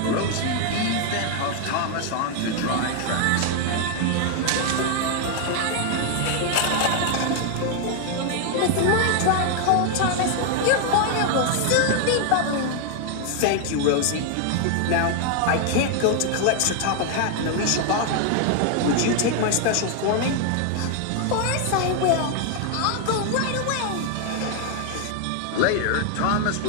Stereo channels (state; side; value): different; both; correlation 0.01